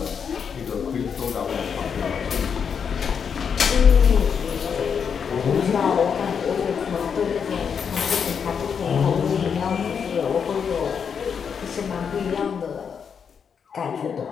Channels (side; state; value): right; quieter; 6.8 dB